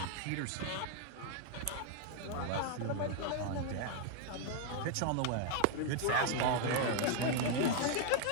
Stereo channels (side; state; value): both; different; correlation 0.00